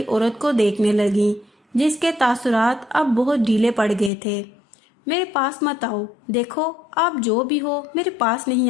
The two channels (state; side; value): drops out; right; at 4.1 s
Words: عورت کو دیکھنے لگی جس کے تاثرات اب بہت ڈھیلے پڑ گئے تھے۔ میرے پاس مت آؤ، دیکھو آپ جو بھی ہو میرے پاس نہیں